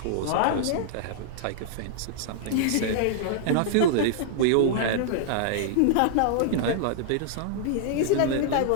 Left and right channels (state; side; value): different; both; correlation -0.01